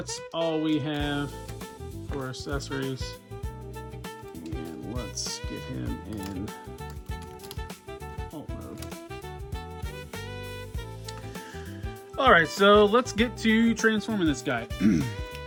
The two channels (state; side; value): identical; both; correlation 1.00